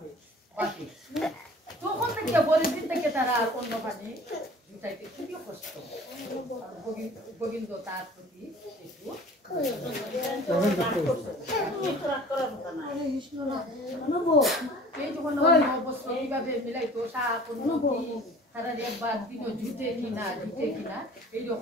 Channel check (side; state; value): both; normal; correlation 0.46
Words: বাকি তখন থেকে পরের দিন থেকে তারা আর অন্য পানি জুটাইতে খুবই কষ্ট গোবিন্দ তার প্রতি একটু এই যখন অবস্থা এইভাবে মিলাইতো শাক তারা একবার দিন জুটে কিনা